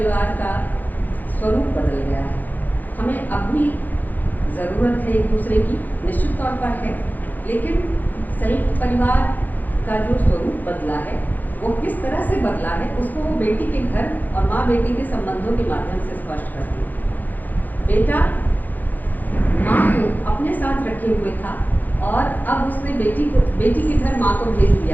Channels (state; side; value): late; right; 0.084 ms